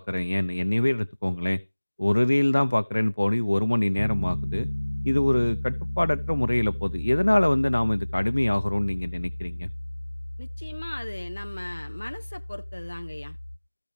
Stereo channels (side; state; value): both; inverted; correlation -1.00